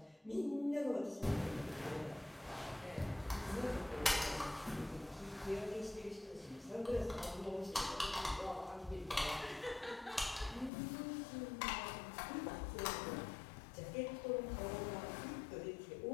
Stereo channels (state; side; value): drops out; right; at 10.7 s